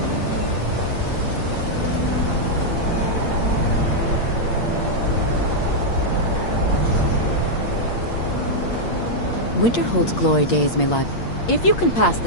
Winterhold's glory days may lie. If you can pass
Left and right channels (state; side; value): late; right; 8.6 ms